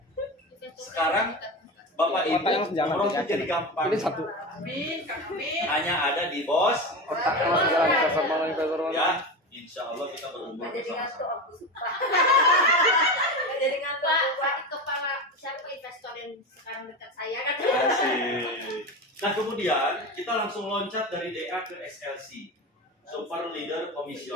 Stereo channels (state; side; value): normal; both; correlation 0.23